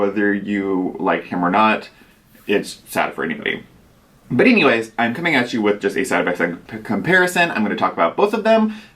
you like him or not, it's sad for anybody. But anyways, I'm coming at you with just a side-by-side comparison. I'm going to talk about both of them.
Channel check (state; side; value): identical; both; correlation 1.00